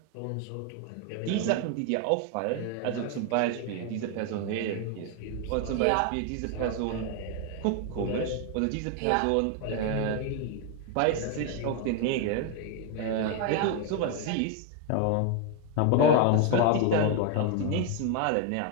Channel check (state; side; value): different; both; correlation 0.01